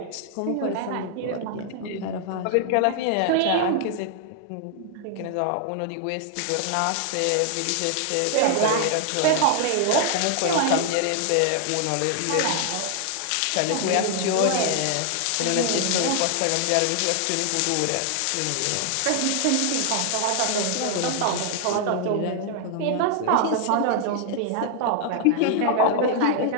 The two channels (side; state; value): both; different; correlation 0.00